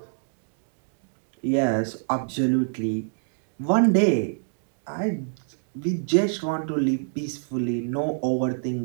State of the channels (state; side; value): silent; left; digital silence